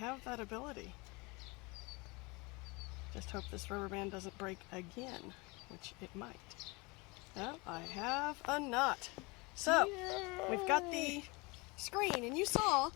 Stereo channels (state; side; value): quieter; right; 26.5 dB